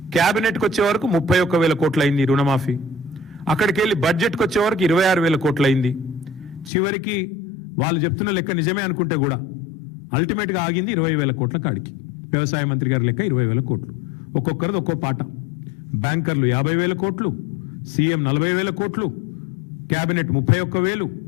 క్యాబినెట్కి వచ్చే వరకు 31,000 కోట్లు అయింది రుణమాఫీ. అక్కడికి వెళ్ళి బడ్జెట్కి వచ్చే వరకు 26,000 కోట్లు అయింది. చివరికి వాళ్ళు చెప్తున్న లెక్క నిజమే అనుకుంటే కూడా అల్టిమేట్గా ఆగింది 20,000 కోట్ల కాడికి. వ్యవసాయ మంత్రి గారి లెక్క 20,000 కోట్లు. ఒక్కొక్కరిది ఒక్కో పాట. బ్యాంకర్లు 50,000 కోట్లు, సీఎం 40,000 కోట్లు, క్యాబినెట్ 31,000,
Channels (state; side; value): drops out; right; at 6.7 s